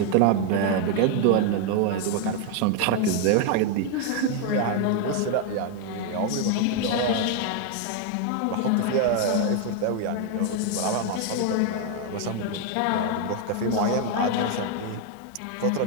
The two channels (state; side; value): different; both; correlation 0.01